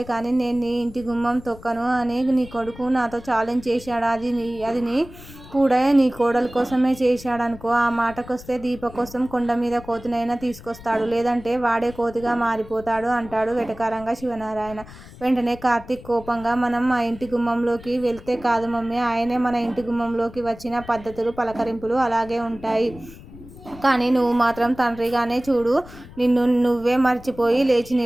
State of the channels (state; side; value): noise; left; rumble, 18 dB below the sound